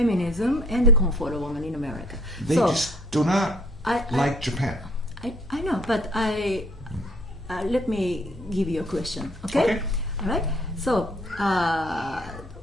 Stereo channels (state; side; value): normal; both; correlation 0.60